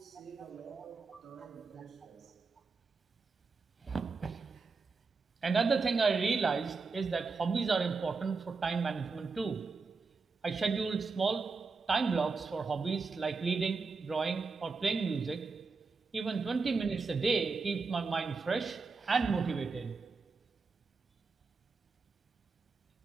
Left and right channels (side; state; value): left; quieter; 4.5 dB